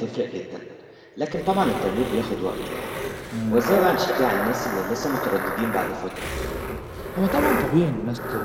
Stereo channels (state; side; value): identical; both; correlation 1.00